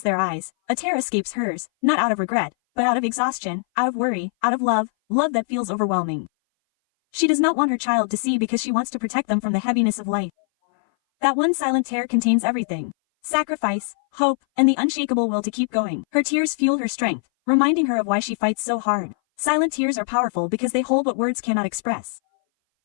their eyes, a tear escapes hers, not out of regret, but out of exhaustion, out of worry, out of love that feels overwhelming. She does not want her child to see because she wants to protect them from the heaviness of life. That one silent tear contains everything: sacrifice, hope, and the unshakable will to keep going. Her tears fuel her strength, reminding her of why she fights so hard. Silent tears are powerful because they hold what words cannot express.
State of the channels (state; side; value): silent; right; 60 dB below the other